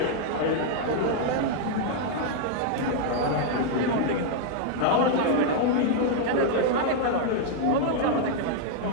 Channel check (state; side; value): different; both; correlation 0.00